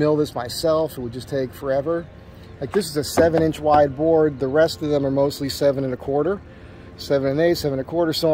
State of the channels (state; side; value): identical; both; correlation 1.00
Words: this myself, it would just take forever. Like this is a 7-inch wide board, the rest of them are mostly 7 1/4. 7 1/8, 7 1/4, so